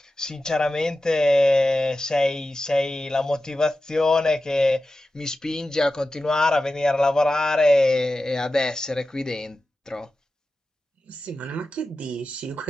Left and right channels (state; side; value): normal; both; correlation 0.93